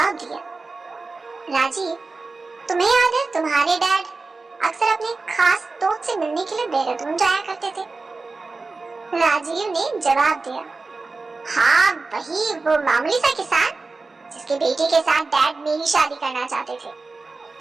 दिया, राजीव तुम्हें याद है तुम्हारे डैड अक्सर अपने खास दोस्त से मिलने के लिए देहरादून जाया करते थे? राजीव ने जवाब दिया, हाँ वही वो मामूली सा किसान जिसके बेटे के साथ डैड मेरी शादी करना चाहते थे।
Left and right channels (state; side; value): quieter; left; 3.8 dB